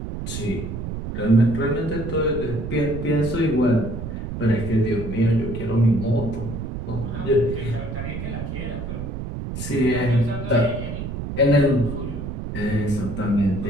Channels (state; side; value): noise; right; rumble, 6 dB below the sound